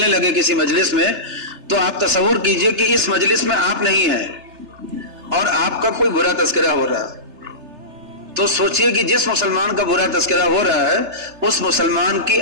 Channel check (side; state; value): left; late; 3.3 ms